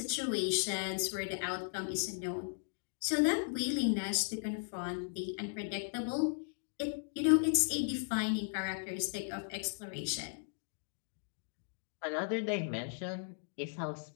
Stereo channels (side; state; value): right; silent; digital silence